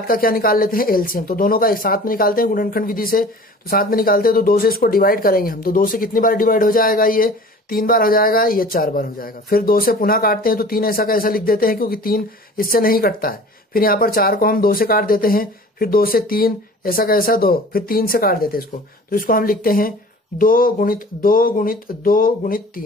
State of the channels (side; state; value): both; normal; correlation 0.44